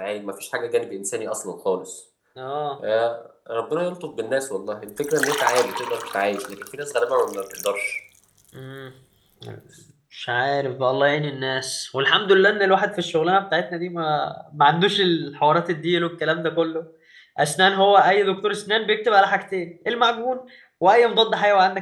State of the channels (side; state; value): both; identical; correlation 1.00